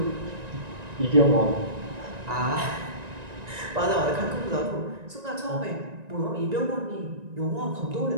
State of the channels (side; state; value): left; late; 1.9 ms